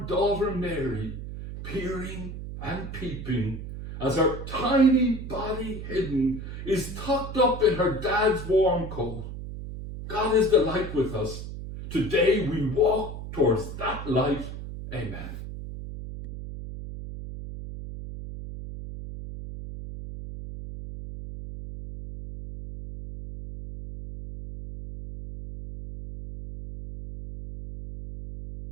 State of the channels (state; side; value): noise; right; hum, 9 dB below the sound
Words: daughter Mary peering and peeping as her tiny body hidden is tucked up in her dad's warm coat. God is the light with us. Today we walk towards that light. Amen.